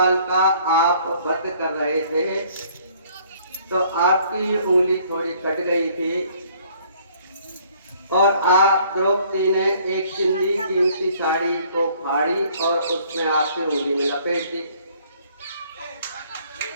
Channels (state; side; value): inverted; both; correlation -0.60